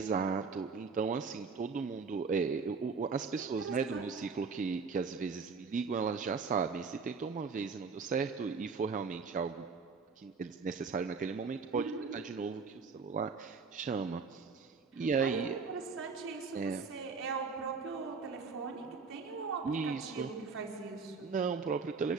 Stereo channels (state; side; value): quieter; left; 4.9 dB